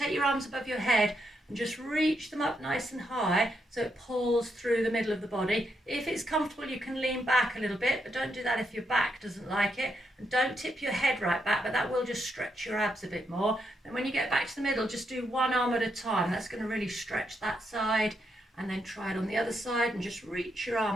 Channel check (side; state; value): both; normal; correlation 0.80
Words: your arms above your head and just reach them up nice and high so it pulls through the middle of the body. If it's comfortable, you can lean back a little bit, but don't do that if your back doesn't like it. And don't tip your head right back, but that will just stretch your abs a bit more. And when you get back to the middle, just do one arm at a time. That's going to really stretch that side. And then try it on the other side and just reach your